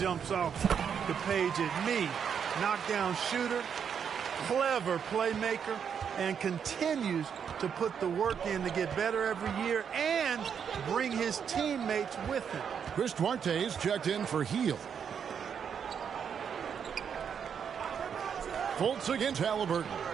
off the page at me. Knockdown shooter, clever playmaker, and continues to put the work in to get better every year and bring his teammates with him. Chris Duarte's checked in for Heel. Fultz against Halliburton.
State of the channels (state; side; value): quieter; left; 7.5 dB